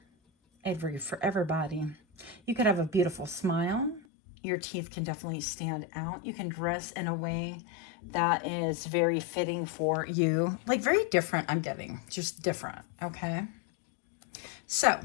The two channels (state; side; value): drops out; right; at 4.0 s